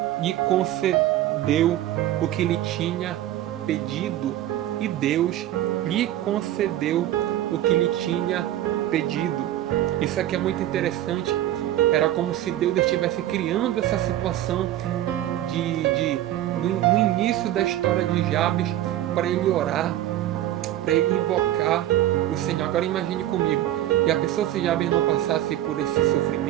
lhe concedeu o que lhe tinha pedido. E Deus lhe concedeu o que lhe tinha pedido. Isso aqui é muito interessante. Era como se Deus estivesse criando essa situação no início da história de Jabes, para ele orar, para ele invocar o Senhor. Agora imagine comigo, e a pessoa, se Jabes não passasse por esse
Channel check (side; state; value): left; quieter; 13.2 dB